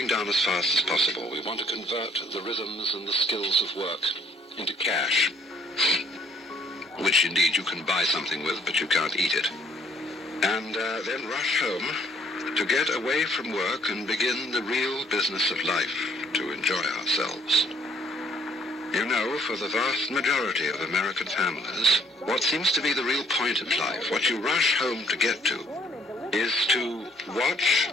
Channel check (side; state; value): both; normal; correlation 0.63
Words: done as fast as possible. We want to convert the rhythms and the skills of work into cash, which indeed you can buy something with, but you can't eat it. And then rush home to get away from work and begin the real business of life, to enjoy ourselves. You know, for the vast majority of American families, what seems to be the real point of life, what you rush home to get to, is to watch